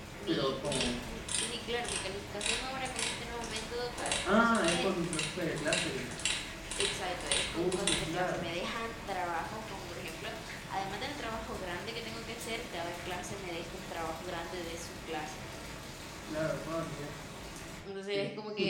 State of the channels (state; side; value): identical; both; correlation 1.00